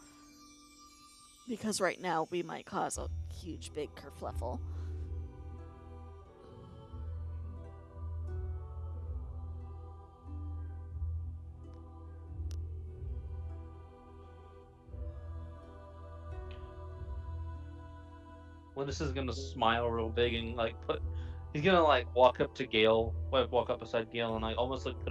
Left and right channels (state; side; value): identical; both; correlation 1.00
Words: Because right now we might cause a huge big kerfluffle. Linus is gonna smile real big and like he's gonna like walk up beside Gale and like almost like